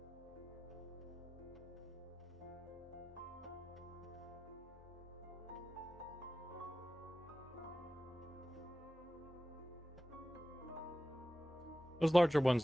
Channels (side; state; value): both; normal; correlation 0.93